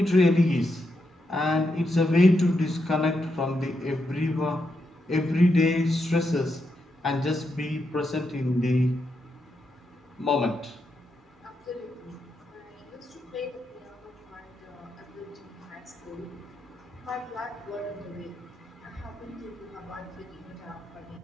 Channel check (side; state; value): both; normal; correlation 0.83